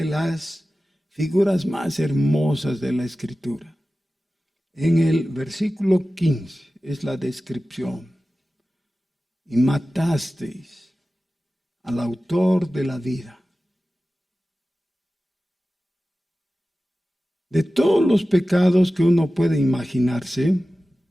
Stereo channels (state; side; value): normal; both; correlation 0.96